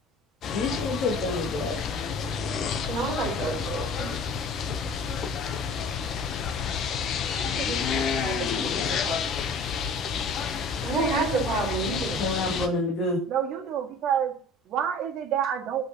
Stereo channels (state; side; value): normal; both; correlation 0.44